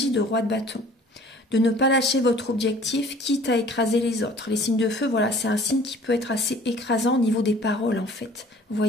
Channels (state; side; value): normal; both; correlation 0.51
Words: de roi de bâton. De ne pas lâcher votre objectif, quitte à écraser les autres. Les signes de feu, voilà, c'est un signe qui peut être assez écrasant au niveau des paroles, en fait. Vous